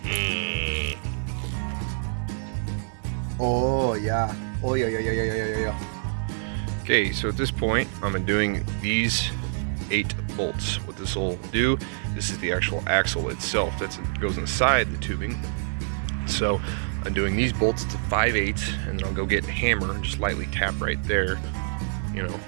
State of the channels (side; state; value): left; silent; digital silence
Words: Oh yeah. Oh yeah. Okay, so at this point, I'm doing these 8 bolts. What this will do, this is the actual axle itself. That goes inside the tubing. So I'm doing these bolts to 5/8, and then I'll go get a hammer and just lightly tap right there, you know,